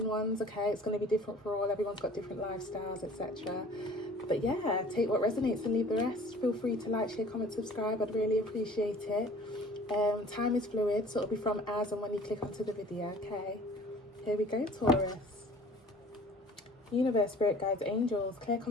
ones, okay? It's going to be different for all, everyone's got different lifestyles, etc. But yeah, take what resonates and leave the rest. Feel free to like, share, comment, subscribe. I'd really appreciate it. Time is fluid, so it'll be from as and when you click onto the video, okay? Here we go, Taurus. Universe, spirit guides, angels, clear,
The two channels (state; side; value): normal; both; correlation 0.48